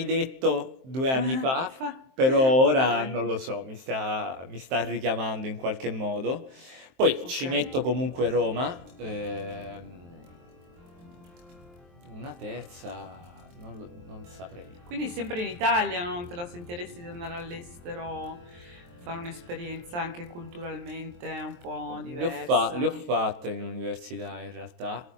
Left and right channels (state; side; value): late; left; 23 ms